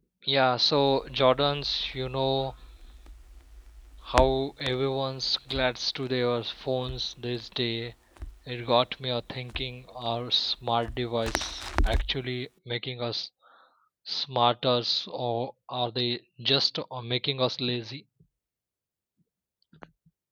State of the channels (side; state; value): both; identical; correlation 1.00